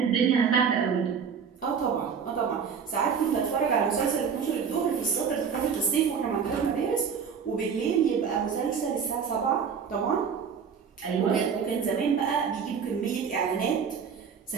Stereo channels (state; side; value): quieter; left; 6.6 dB